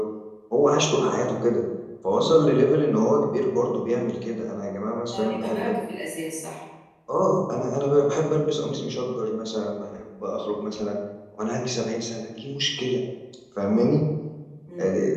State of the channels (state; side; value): identical; both; correlation 1.00